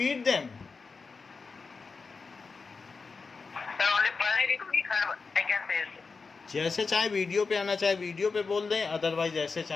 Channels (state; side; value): quieter; right; 4.6 dB